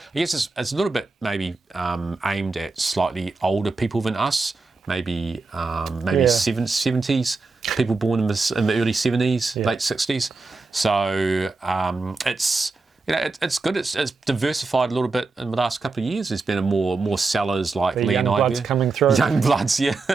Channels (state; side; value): quieter; left; 3.8 dB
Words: guess it's a little bit maybe aimed at slightly older people than us. Maybe 70s people born in the early 70s, late 60s. So it's good. It's diversified a little bit in the last couple of years. There's been more sellers like Lee and I. Young bloods coming through. Young bloods, yeah.